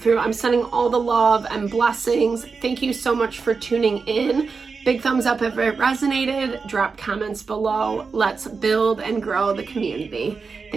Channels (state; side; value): quieter; left; 4.9 dB